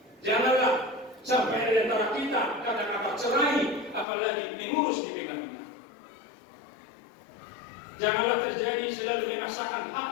janganlah sampai di antara kita kata-kata cerai, apalagi mengurus di pengadilan. Janganlah terjadi selalu memaksakan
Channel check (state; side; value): drops out; right; at 4.0 s